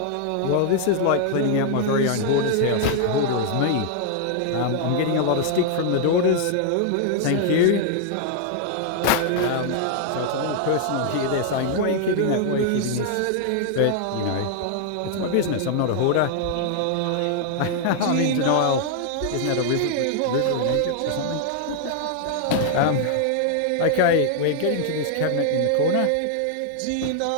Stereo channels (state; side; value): different; both; correlation 0.00